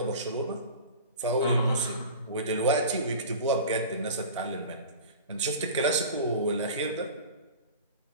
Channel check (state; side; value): inverted; both; correlation -0.37